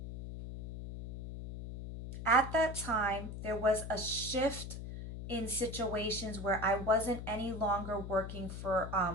At that time, there was a shift in situations where I wasn't any longer working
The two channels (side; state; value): left; noise; hum, 8 dB below the sound